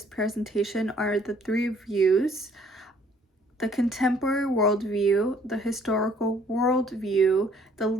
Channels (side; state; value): both; normal; correlation 0.61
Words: presentation are the three views: the contemporary worldview, the historical worldview, the